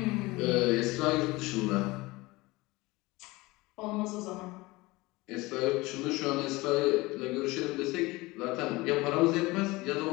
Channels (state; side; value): quieter; right; 21.7 dB